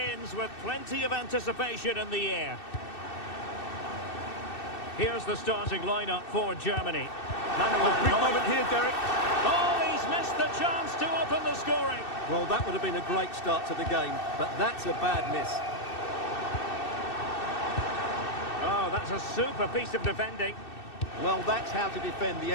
with plenty of anticipation in the air. Here's the starting lineup for Germany. Big moment here, Derek. Oh, he's missed the chance to open the scoring. Well, that would have been a great start to the game, but that's a bad miss. Oh, that's a super piece of defending. Well, that's how to defend the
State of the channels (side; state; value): right; late; 2.6 ms